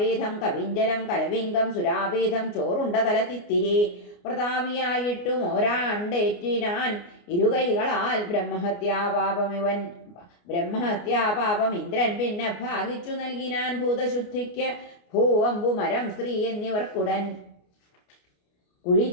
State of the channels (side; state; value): right; late; 29 ms